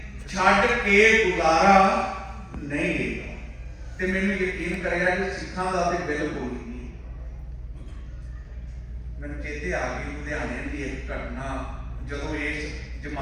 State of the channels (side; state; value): both; identical; correlation 1.00